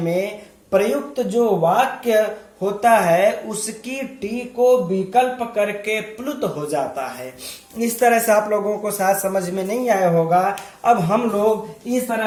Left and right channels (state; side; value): identical; both; correlation 1.00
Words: प्रयुक्त जो वाक्य होता है उसकी टी को विकल्प करके प्लुत हो जाता है। इस तरह से आप लोगों को शायद समझ में नहीं आया होगा। अब हम लोग इस